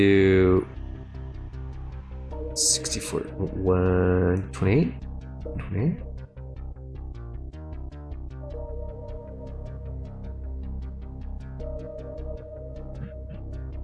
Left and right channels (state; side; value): identical; both; correlation 1.00